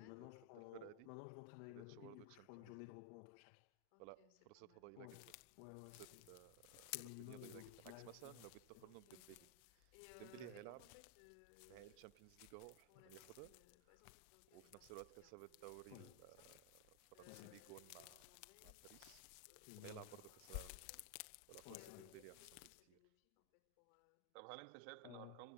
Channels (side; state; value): both; different; correlation 0.00